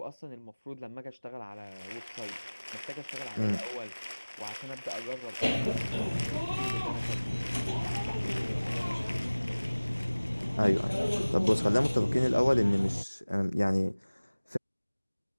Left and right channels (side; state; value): both; inverted; correlation -1.00